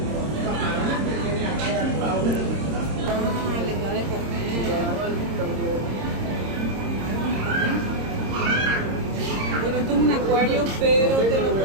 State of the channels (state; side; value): late; left; 26 ms